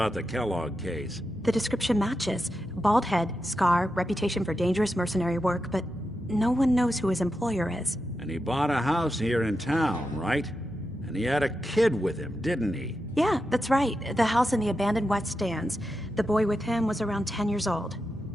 the Kellogg case? The description matches. Bald head, scar, reputation for dangerous mercenary work, but no one knows who his employer is. And he bought a house here in town, right? And he had a kid with him, didn't he? Yeah, that's right. The house in the abandoned West Stands. The boy with him was around 10 years old.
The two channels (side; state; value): both; normal; correlation 0.88